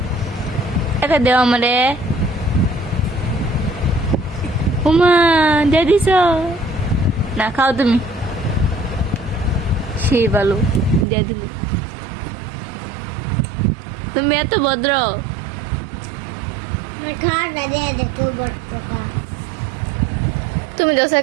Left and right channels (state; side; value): drops out; left; at 11.1 s